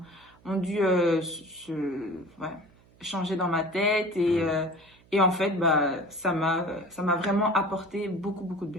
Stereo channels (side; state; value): right; noise; hum, 29 dB below the sound